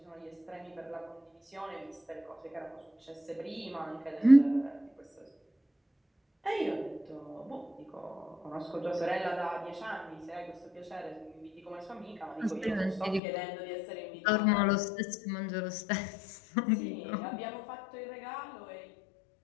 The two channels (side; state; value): right; drops out; at 13.2 s